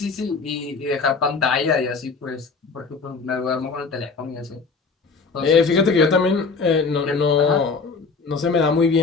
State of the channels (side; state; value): right; quieter; 4.6 dB